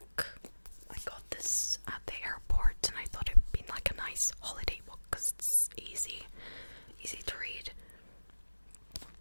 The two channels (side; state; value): both; inverted; correlation -1.00